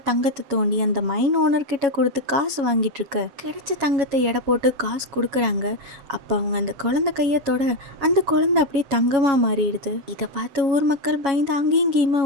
தங்கத்தை தோண்டி அந்த மைன் ஓனர் கிட்ட கொடுத்து காசு வாங்கிட்டு இருக்க கிடைச்ச தங்கத்தை எடை போட்டு காசு கொடுக்குறாங்க. அப்ப அவங்க அந்த குழந்தை கையை தொட அந்த குழந்தை அப்படியே தங்கமா மாறிடுது. இதை பார்த்து ஊர் மக்கள் பயந்து அங்கேயும் இங்கேயுமா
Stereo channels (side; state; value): left; late; 7.2 ms